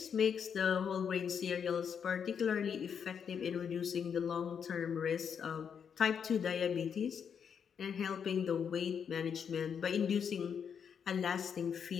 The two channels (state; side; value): quieter; right; 7.3 dB